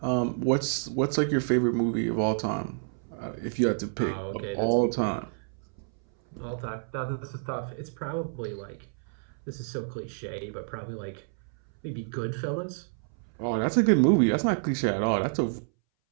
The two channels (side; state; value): left; silent; 59 dB below the other